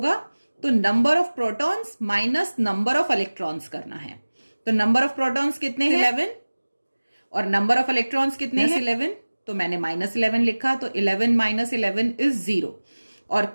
तो number of protons minus number of electrons करना है। तो नंबर ऑफ प्रोटॉन्स कितने हैं? 11, और नंबर ऑफ इलेक्ट्रॉन्स कितने हैं? 11। तो मैंने -11 लिखा, तो 11 - 11 इज 0। और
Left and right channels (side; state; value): both; inverted; correlation -1.00